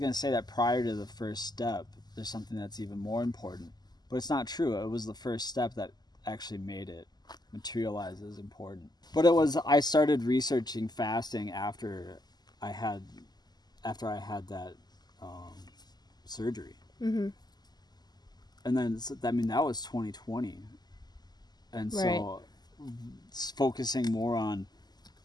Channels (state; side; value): late; right; 0.20 ms